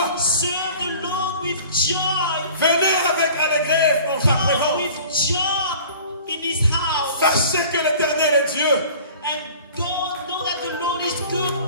serve the Lord with joy. Venez avec allégresse dans sa Come présence. with joy in His house. Sachez que l'éternel est Dieu. And God know that the Lord is good.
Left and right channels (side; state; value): both; inverted; correlation -0.45